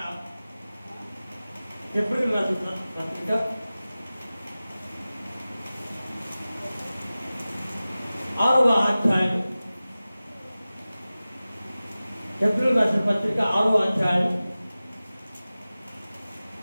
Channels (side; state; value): both; inverted; correlation -0.97